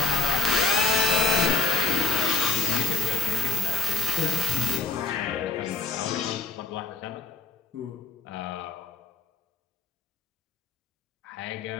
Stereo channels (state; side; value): quieter; right; 4.2 dB